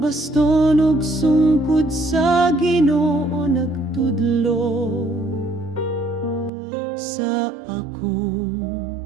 ug sungkod sa Ginoo nagtudlo sa akong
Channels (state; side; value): drops out; left; at 6.5 s